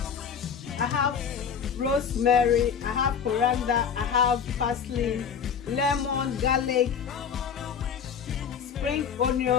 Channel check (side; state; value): right; quieter; 7.1 dB